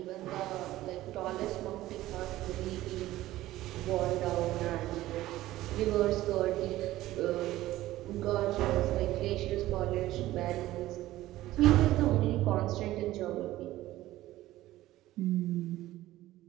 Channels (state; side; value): quieter; left; 15.7 dB